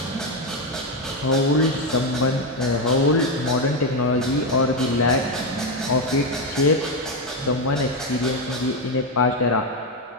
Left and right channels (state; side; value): normal; both; correlation 0.07